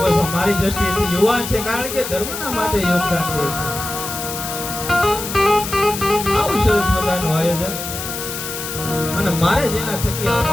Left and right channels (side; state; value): left; noise; hiss, 7 dB below the sound